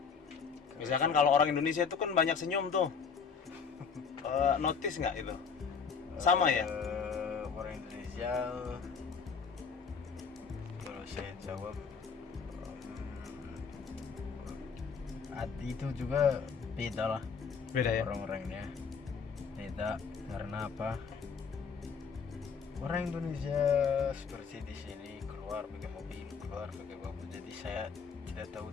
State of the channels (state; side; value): quieter; right; 5.9 dB